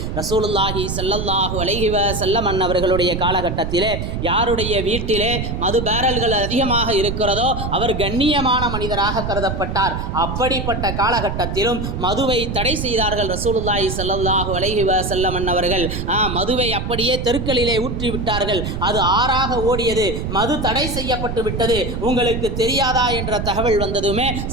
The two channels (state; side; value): noise; right; rumble, 4 dB below the sound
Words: ரசூலுல்லாஹி ஸல்லல்லாஹு அலைஹி வஸல்லம் அவர்களுடைய காலகட்டத்திலே யாருடைய வீட்டிலே மது பேரல்கள் அதிகமாக இருக்கிறதோ அவர் கண்ணியமான மனிதராக கருதப்பட்டார். அப்படிப்பட்ட காலகட்டத்திலும் மதுவை தடை செய்தார்கள் ரசூலுல்லாஹி ஸல்லல்லாஹு அலைஹி வஸல்லம் அவர்கள். மதுவை அப்படியே தெருக்களிலே ஊற்றி விட்டார்கள். அது ஆறாக ஓடியது. மது தடை செய்யப்பட்டு விட்டது. உங்களுக்கு தெரியாதா என்ற தகவல் வந்ததுமே